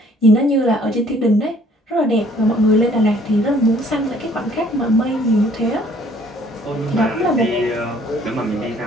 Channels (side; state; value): both; normal; correlation 0.59